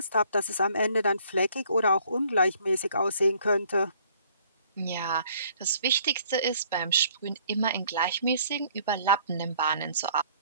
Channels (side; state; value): both; inverted; correlation -0.60